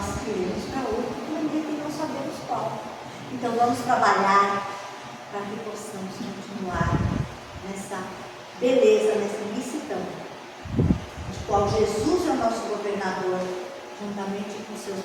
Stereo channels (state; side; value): identical; both; correlation 1.00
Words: iremos para outro planeta e não sabemos qual. Então vamos trabalhar para que possamos continuar nessa beleza, nessa imensidão, de qual Jesus é o nosso governador, juntamente com seus